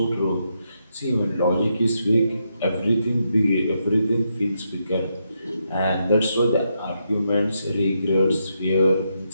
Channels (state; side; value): inverted; both; correlation -0.81